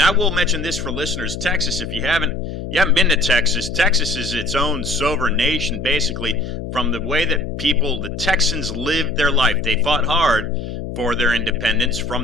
I will mention this for listeners. Texas, if you haven't been to Texas, Texas is its own sovereign nation, basically, from the way that the Texans lived their life. They fought hard for their independence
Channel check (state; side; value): noise; left; hum, 7 dB below the sound